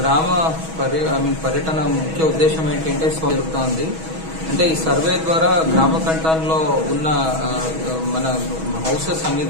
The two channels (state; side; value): late; left; 6.2 ms